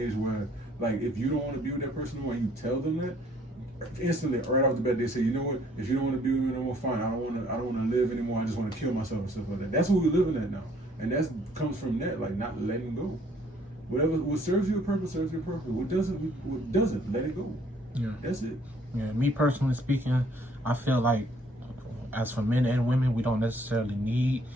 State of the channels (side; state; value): both; normal; correlation 0.62